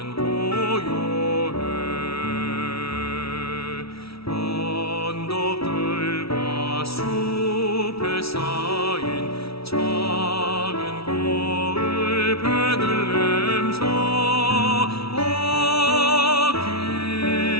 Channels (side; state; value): right; late; 0.76 ms